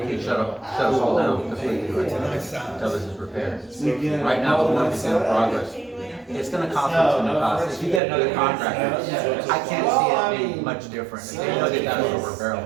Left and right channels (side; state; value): left; drops out; at 8.0 s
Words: shut us all down completely until this is repaired. Right now, the work is in progress. It's gonna cost us some cost. If you get another contractor, I can't see it being much different. If they know they got us over a